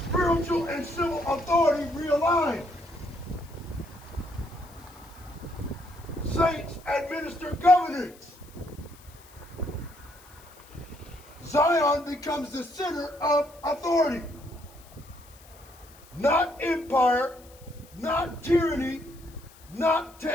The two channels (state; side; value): noise; left; hiss, 24 dB below the sound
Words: Spiritual and civil authority realign. Saints administer governance. Zion becomes the center of authority. not empire, not tyranny, not